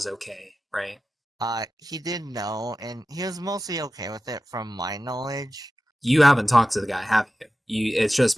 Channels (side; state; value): both; normal; correlation 0.94